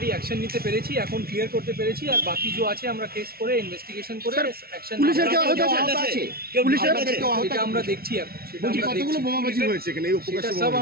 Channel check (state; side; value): late; left; 0.44 ms